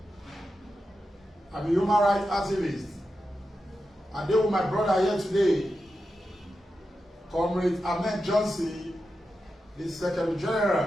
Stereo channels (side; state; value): both; normal; correlation 0.90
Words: I'm a human rights activist. I deal with my brother here today, Comrade Ahmed Johnson, the Secretary